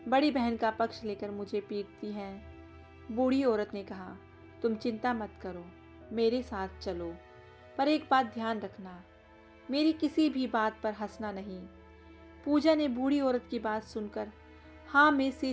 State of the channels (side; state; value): both; identical; correlation 1.00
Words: बड़ी बहन का पक्ष लेकर मुझे पीटती हैं। बूढ़ी औरत ने कहा, तुम चिंता मत करो, मेरे साथ चलो, पर एक बात ध्यान रखना, मेरी किसी भी बात पर हंसना नहीं। पूजा ने बूढ़ी औरत की बात सुनकर हाँ में